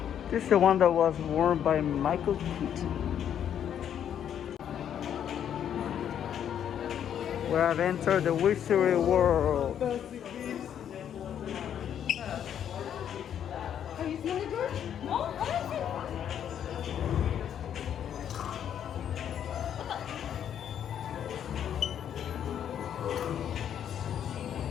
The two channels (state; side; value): quieter; right; 9.4 dB